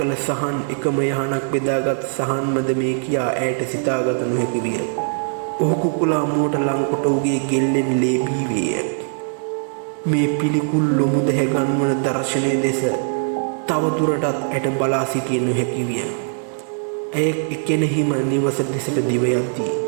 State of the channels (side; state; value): left; silent; digital silence